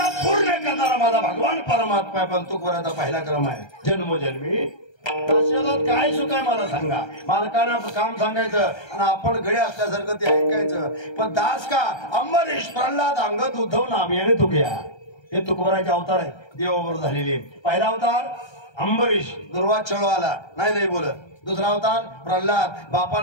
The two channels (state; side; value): late; right; 1.3 ms